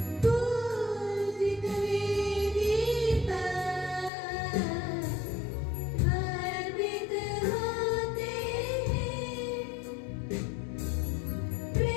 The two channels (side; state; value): right; drops out; at 4.1 s